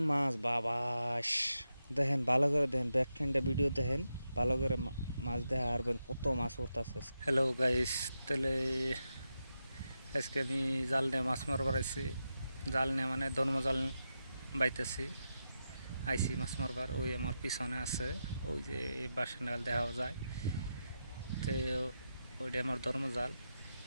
মাছ বাবাস দেখেন ভালো করে দেখেন ব্যাকখানটা ভিডিও দেখেন ভালো করে মাছ দেখা আরবেন কত মাছ উঠতাছে। হ্যালো গাইস, তাহলে আজকে আমি জাল নিয়ে মাছ মারবার আইছি। জাল নিয়ে মানে ধর্ম জাল বাইতেছি আইসি মাছ মারবার। ওই আমার পিছনে আছে ওই যে বাসা নাগাল দেখা যায় তো ওইটা আমার ধর্ম জাল।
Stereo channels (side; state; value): both; inverted; correlation -0.88